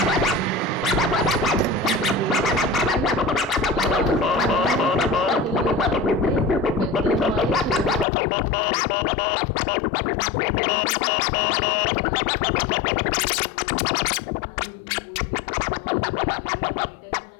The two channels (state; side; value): drops out; right; at 8.1 s